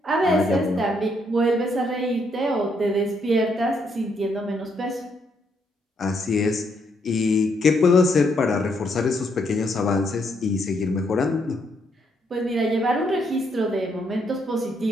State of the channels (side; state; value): both; normal; correlation 0.74